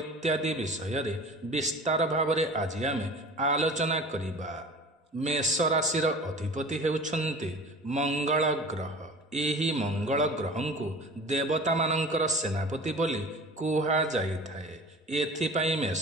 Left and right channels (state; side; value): normal; both; correlation 0.40